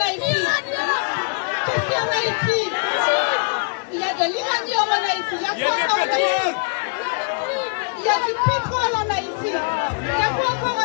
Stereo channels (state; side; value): quieter; right; 37.1 dB